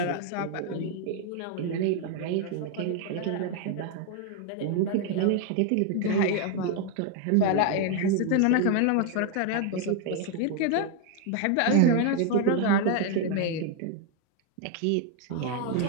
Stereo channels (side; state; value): both; different; correlation 0.01